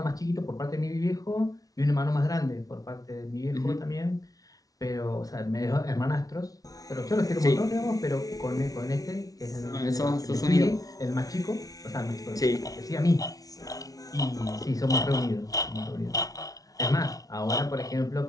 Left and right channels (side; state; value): right; late; 0.18 ms